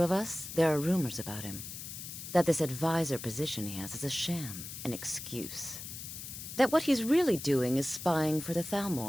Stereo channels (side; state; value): left; noise; hiss, 9 dB below the sound